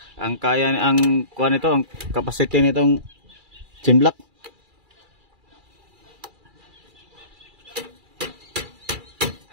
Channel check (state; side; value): late; left; 2.3 ms